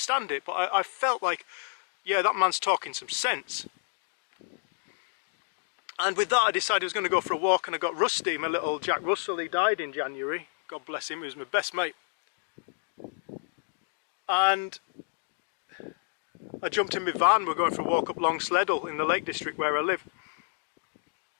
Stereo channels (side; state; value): right; silent; digital silence